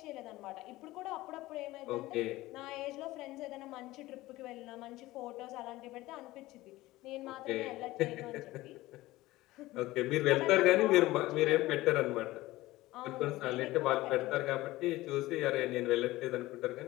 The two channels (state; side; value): quieter; right; 18.0 dB